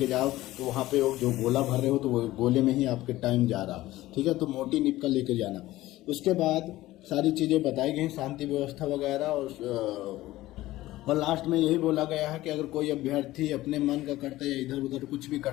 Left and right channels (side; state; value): right; quieter; 16.6 dB